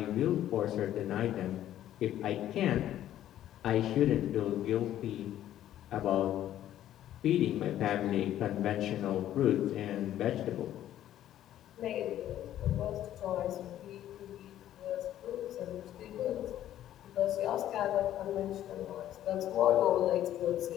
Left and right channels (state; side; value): quieter; right; 12.2 dB